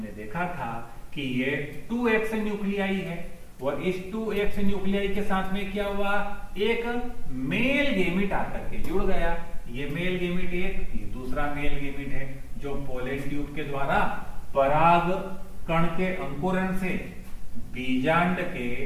देखा था कि ये 2x न्यूक्लियाई है और इस 2x न्यूक्लियाई के साथ में क्या हुआ, एक मेल गेमिट आकर के जुड़ गया। ये मेल गेमिट एक, ये दूसरा मेल गेमिट है जो पोलन ट्यूब के द्वारा पराग कण के अंकुरण से बीजांड के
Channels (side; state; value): both; identical; correlation 1.00